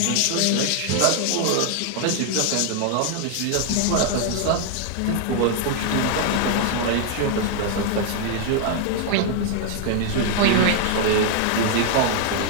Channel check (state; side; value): different; both; correlation 0.00